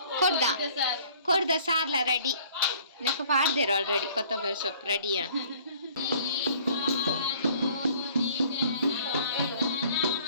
ಕೊಡ್ದ ಸಾರ್ಲ ರೆಡಿ ನೆಕ್ ಪಾಡ್ದೇರ ಆಲ್ರೆಡಿ ಕೊತ್ತಂಬರಿ ಸೊಪ್ಪು ರೆಡಿ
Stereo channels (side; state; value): both; inverted; correlation -0.55